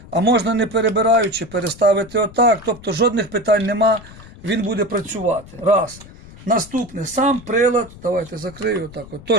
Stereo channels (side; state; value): left; noise; rumble, 19 dB below the sound